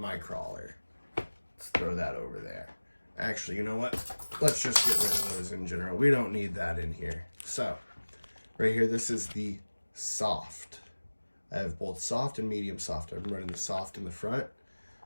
crawler. Let's throw that over there. Actually, you know what? Let's just get rid of those in general. We don't need that in here. So, right here, this is the soft. I have both soft and medium soft. I'm running the soft in the front.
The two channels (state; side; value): inverted; both; correlation -1.00